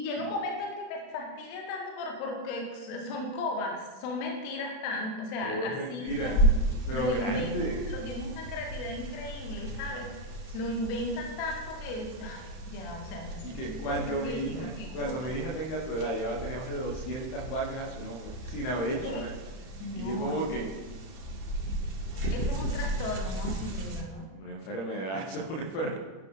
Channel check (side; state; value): right; late; 31 ms